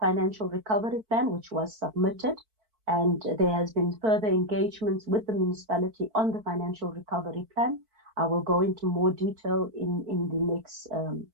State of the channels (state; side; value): late; left; 4.5 ms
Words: recovery plan which was submitted, and there has been further engagements with the municipality on the financial recovery plan. I will go into more detail in the next